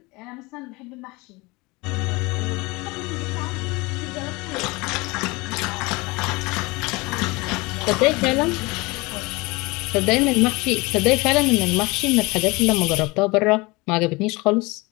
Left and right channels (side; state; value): right; quieter; 24.5 dB